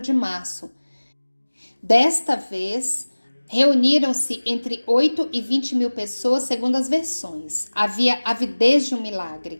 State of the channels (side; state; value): both; inverted; correlation -1.00